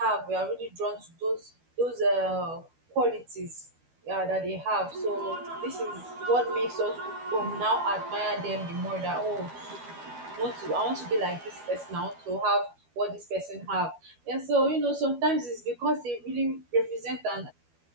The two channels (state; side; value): late; left; 12 ms